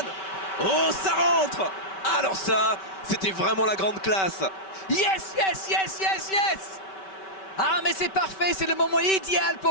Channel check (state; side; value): late; right; 5.2 ms